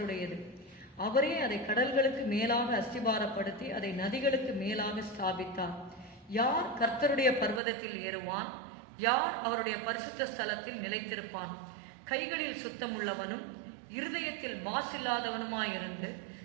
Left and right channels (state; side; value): drops out; left; at 7.6 s